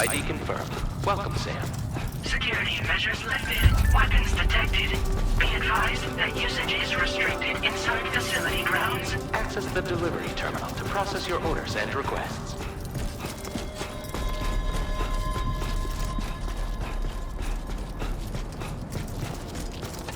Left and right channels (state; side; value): identical; both; correlation 1.00